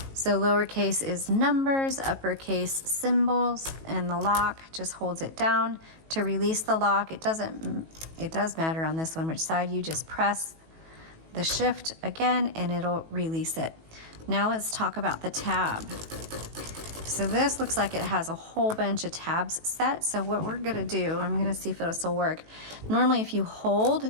So lowercase is numbers, uppercase symbols, and the lock just holds it down. To release the lock, it does matter on this one which side. You just press the shift again and it'll release it. Now let's talk about the tab. So this looks like it has a whole bunch of tabs set. So what we're gonna do, I'm gonna see if this will work. Normally if you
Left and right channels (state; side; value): late; left; 18 ms